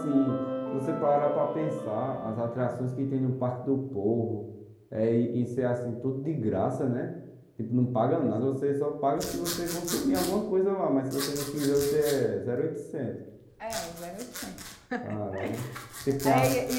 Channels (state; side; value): identical; both; correlation 1.00